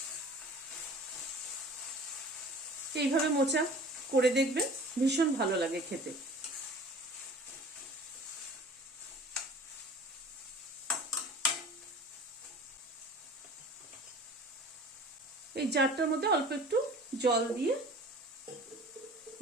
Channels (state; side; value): normal; both; correlation 0.44